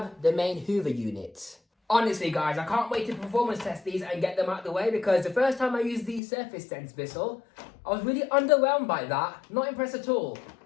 the main Hoover unit. Honestly, guys, I can't wait to performance test these and get them out of the way, because the first time I used the Surface Sense Bissell, I was really underwhelmed by that. Not impressed at all.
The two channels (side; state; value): right; drops out; at 6.2 s